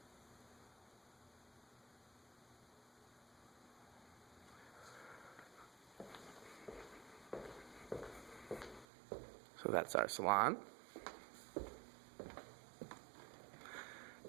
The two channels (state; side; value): drops out; left; at 8.8 s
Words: So that's our salon.